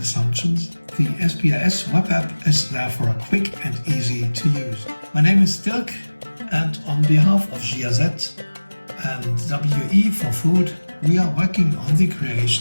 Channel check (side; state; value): both; inverted; correlation -1.00